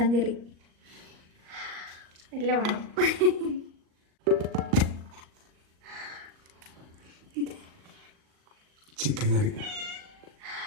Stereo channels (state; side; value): late; left; 38 ms